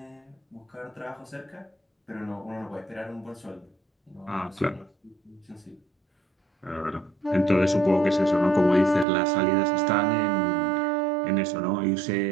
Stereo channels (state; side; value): drops out; left; at 9.1 s